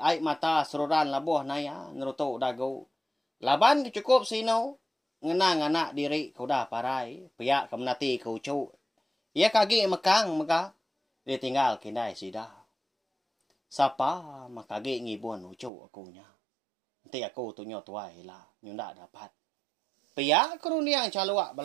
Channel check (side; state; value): left; drops out; at 15.7 s